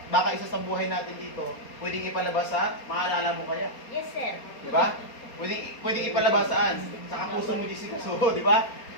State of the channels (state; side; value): late; right; 4.3 ms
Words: baka isa sa buhay natin dito, pwedeng ipalabas sa, maalala mo kaya. Yes, sir. Di ba? Pwedeng ipalabas saan? Sa kapuso mo, Jessica. So, di ba?